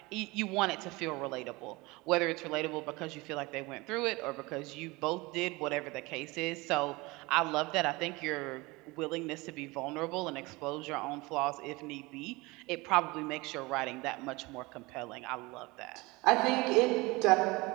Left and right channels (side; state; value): left; quieter; 23.3 dB